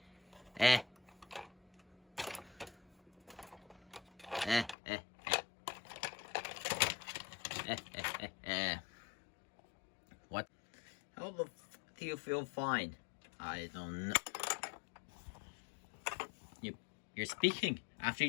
What? How the f do you feel fine? I don't know. You're speaking after you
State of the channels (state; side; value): drops out; right; at 4.8 s